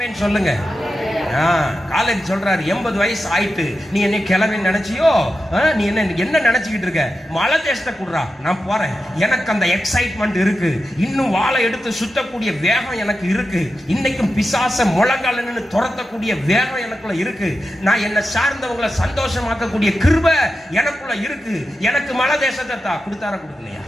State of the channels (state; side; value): normal; both; correlation 0.90